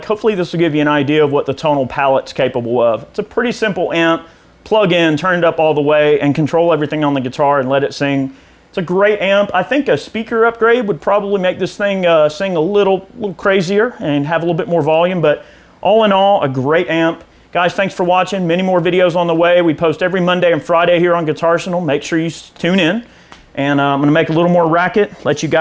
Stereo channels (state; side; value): identical; both; correlation 1.00